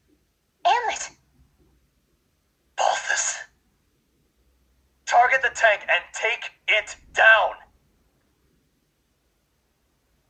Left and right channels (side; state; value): both; identical; correlation 1.00